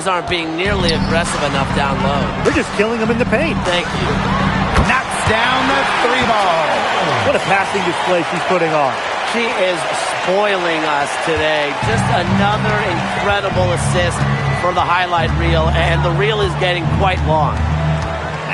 aren't being nearly aggressive enough down low. They're just killing them in the paint. Thank you. Knocks down the 3-ball. What a passing display she's putting on. She is spoiling us today. Just another incredible assist for the highlight reel, and the reel is getting quite long.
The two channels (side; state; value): both; identical; correlation 1.00